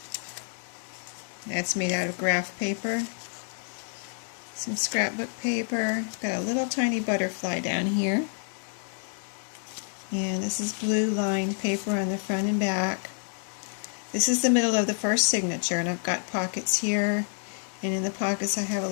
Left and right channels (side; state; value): right; silent; 59 dB below the other